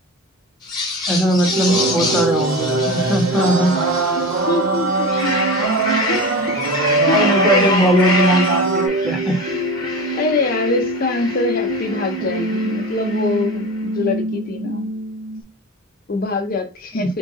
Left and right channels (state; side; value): normal; both; correlation 0.29